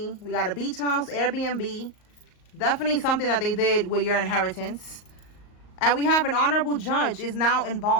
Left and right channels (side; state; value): right; late; 38 ms